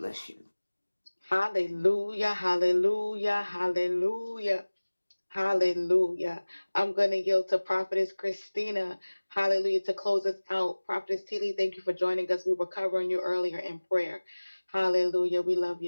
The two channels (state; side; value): inverted; both; correlation -1.00